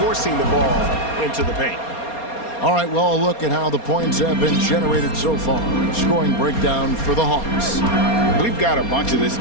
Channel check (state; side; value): late; right; 4.3 ms